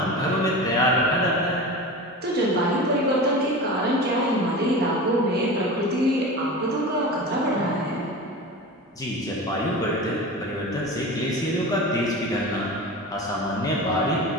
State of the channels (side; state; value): both; normal; correlation 0.30